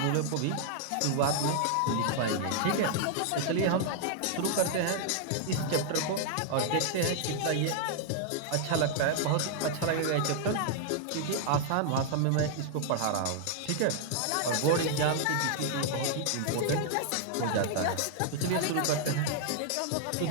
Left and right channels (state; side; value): different; both; correlation -0.01